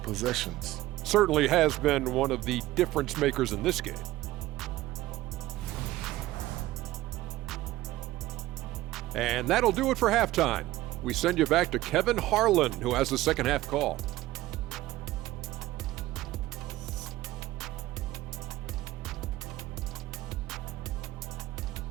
possessions. Certainly has been one of the difference makers in this game. And that'll do it for halftime. We send you back to Kevin Harlan, who has the second half call.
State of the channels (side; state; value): left; quieter; 16.5 dB